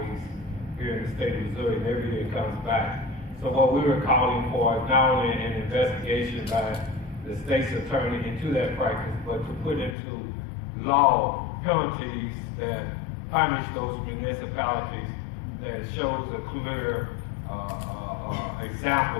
here in the state of Missouri, and every year it comes back. So what we were calling for is not only an investigation by the state's attorney into that practice, but to put into law penalties that punish those municipalities that shows a clear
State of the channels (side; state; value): right; drops out; at 10.0 s